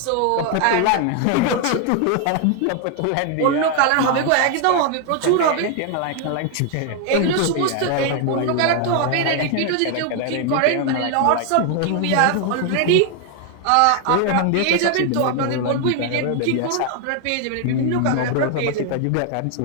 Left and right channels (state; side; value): different; both; correlation 0.00